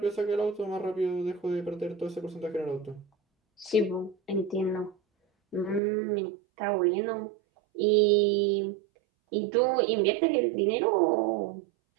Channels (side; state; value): left; drops out; at 5.8 s